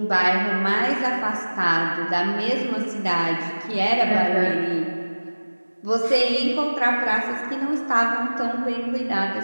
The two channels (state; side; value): inverted; both; correlation -1.00